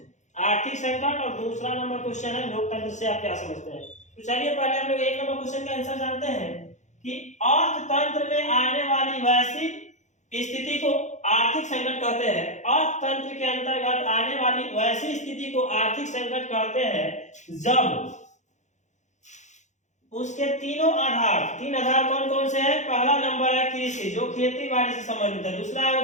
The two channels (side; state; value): right; late; 0.35 ms